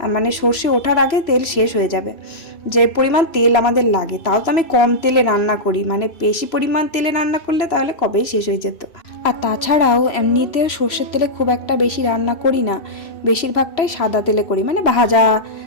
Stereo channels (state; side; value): late; right; 3.0 ms